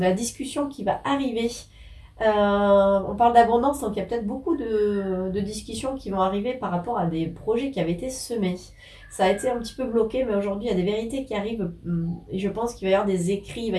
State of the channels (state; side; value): identical; both; correlation 1.00